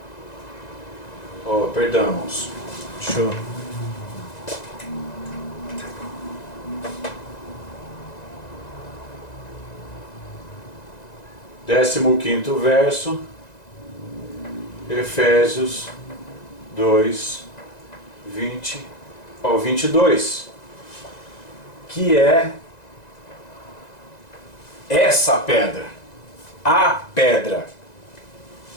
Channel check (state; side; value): late; right; 1.9 ms